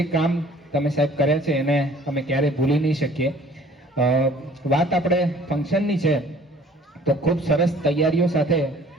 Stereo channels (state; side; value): normal; both; correlation 0.53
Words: કામ તમે સાહેબ કર્યા છે એને અમે ક્યારેય ભૂલી નહીં શકીએ. વાત આપણે ફંક્શનની છે તો ખૂબ સરસ તૈયારીઓ સાથે